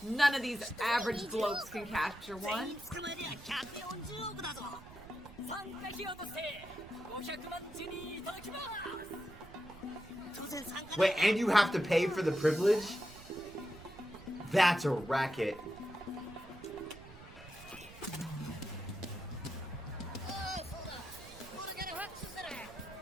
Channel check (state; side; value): noise; right; rumble, 18 dB below the sound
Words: None of these average blokes can capture 全 one. 員捕まえりゃ140億だぞ。参加費用として500万ジェリーいただきます。当然参加 Wait, and you have to pay for the privilege? That's a racket. おい、そうだ。これからファックスする。